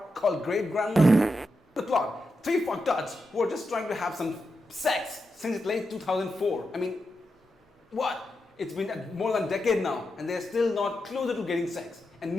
called Great Grand Masti. The plot, 3 fucktards who are just trying to have some sex since late 2004. I mean, what? It's been more than a decade now and they're still not closer to getting sex. And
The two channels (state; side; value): normal; both; correlation 0.87